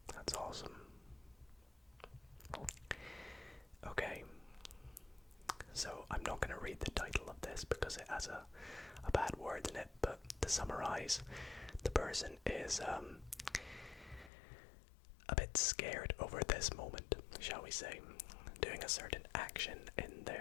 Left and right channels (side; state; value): right; drops out; at 14.3 s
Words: That's awesome. Okay, so I'm not going to read the title of this because it has a bad word in it, but to summarize, the person is a bit scared over this moment, shall we say, doing a certain action in